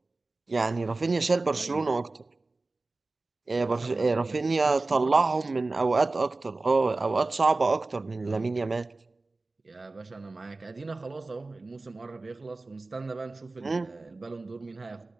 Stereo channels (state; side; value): quieter; left; 3.3 dB